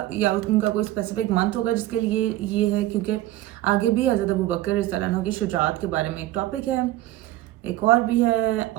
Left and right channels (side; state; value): left; quieter; 15.3 dB